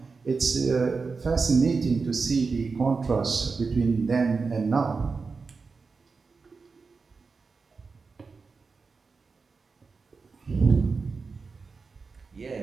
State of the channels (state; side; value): quieter; left; 4.6 dB